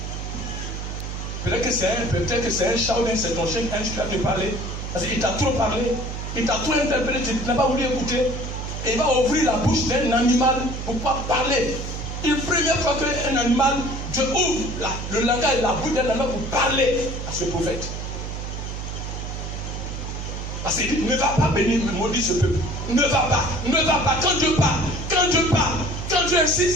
Peut-être que c'est un chat ou c'est ton chien qui va te parler. Parce qu'il t'a trop parlé, il t'a trop interpellé, tu n'as pas voulu écouter. Et il va ouvrir la bouche d'un animal pour pouvoir parler. Une première fois qu'un animal, Dieu ouvre le langage, la bouche d'un animal pour parler à ce prophète. Parce qu'il dit, ne va pas bénir, maudit ce peuple. Ne va pas. Quand Dieu parle, quand Dieu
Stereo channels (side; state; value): right; noise; hum, 6 dB below the sound